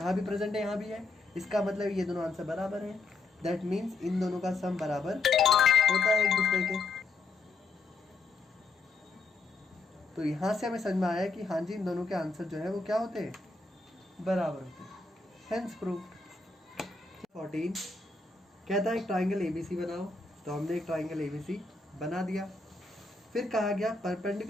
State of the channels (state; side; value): quieter; right; 3.7 dB